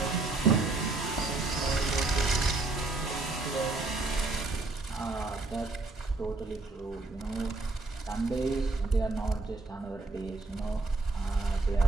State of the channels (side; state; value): left; quieter; 3.5 dB